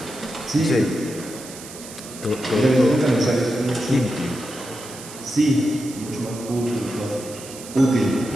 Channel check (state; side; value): noise; right; hiss, 14 dB below the sound